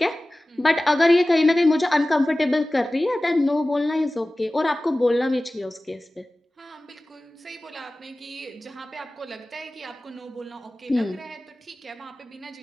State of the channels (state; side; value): normal; both; correlation 0.97